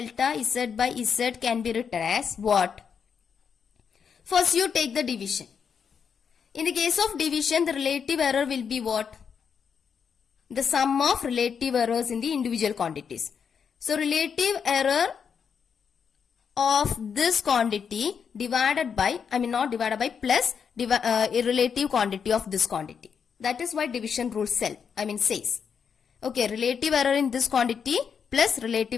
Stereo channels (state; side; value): quieter; right; 6.8 dB